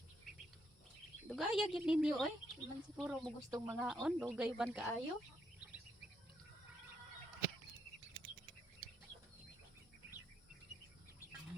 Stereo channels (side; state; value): both; normal; correlation 0.76